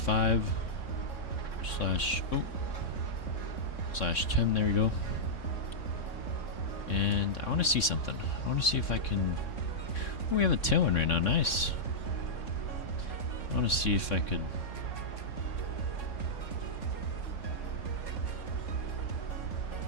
/10. There we go. And I want to see something. I want to see if I can. Oh, we have a tailwind right now. Nice. I want to see if I could.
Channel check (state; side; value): late; right; 3.6 ms